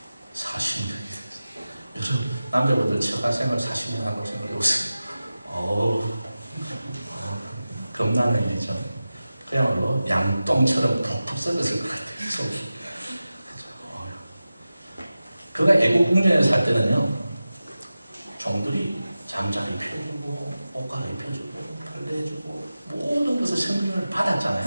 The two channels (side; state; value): both; inverted; correlation -0.95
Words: 40년이 됐어요. 여러분, 남자분들 처가생활 40년 하고 생각해보세요. 겁나는 일이죠. 그야말로 양똥처럼 푹푹 썩었을 것 같아요, 속이. 그가 애국 궁전에 살 때는요, 종들이 잠자리 펴주고, 옷갈아 입혀주고, 빨래해주고, 모든 것을 성경을 받았잖아요.